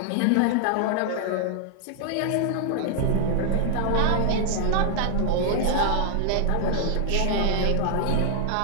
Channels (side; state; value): both; different; correlation 0.00